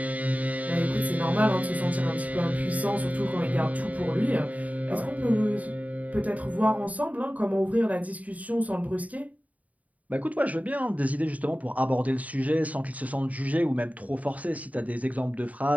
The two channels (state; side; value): late; left; 0.071 ms